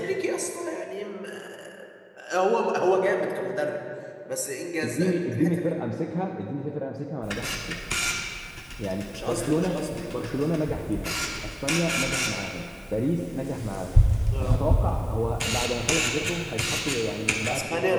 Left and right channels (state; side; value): identical; both; correlation 1.00